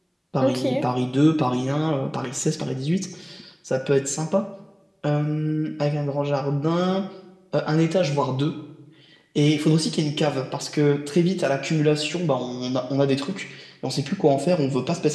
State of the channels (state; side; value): identical; both; correlation 1.00